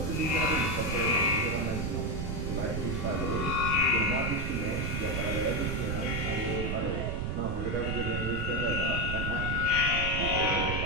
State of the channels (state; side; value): noise; right; rumble, 2 dB below the sound